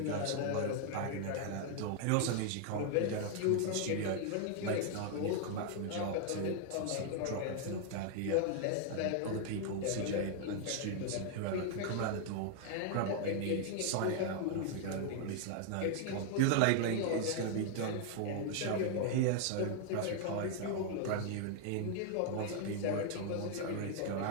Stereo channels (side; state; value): both; different; correlation 0.00